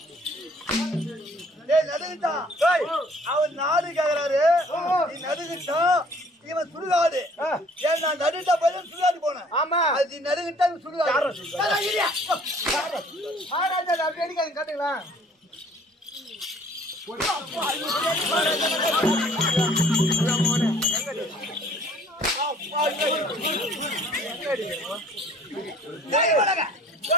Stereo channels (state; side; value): normal; both; correlation 0.56